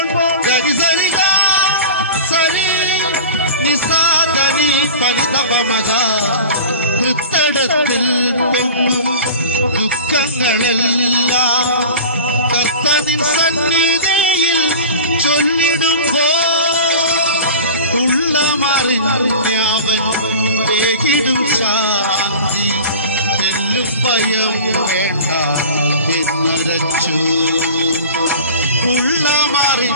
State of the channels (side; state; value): both; inverted; correlation -0.37